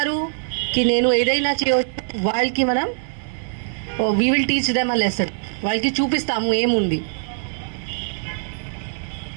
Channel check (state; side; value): silent; left; digital silence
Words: కి నేను ఏదైనా చేయవచ్చు, వాళ్ళకి మనం we will teach them a lesson. వాళ్ళకి చూపిస్తాము ఏముంది.